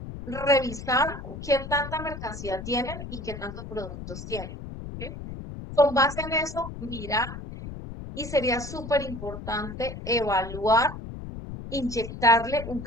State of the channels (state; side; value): noise; left; rumble, 10 dB below the sound